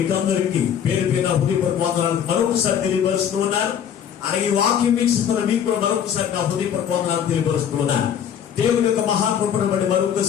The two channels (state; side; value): quieter; right; 8.8 dB